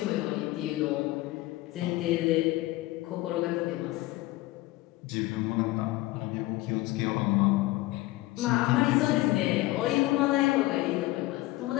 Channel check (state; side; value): quieter; right; 18.5 dB